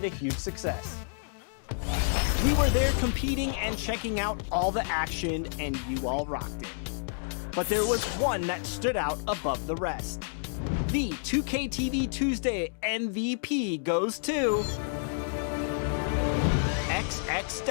a huge success. We were there competing and checking out all the action, and you all rocked it. But there was one that stood out above the rest. The 2K TV Tuesday MVP goes to XX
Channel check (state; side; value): silent; right; digital silence